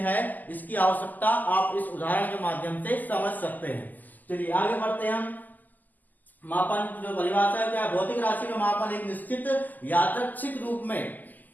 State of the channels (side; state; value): right; late; 0.084 ms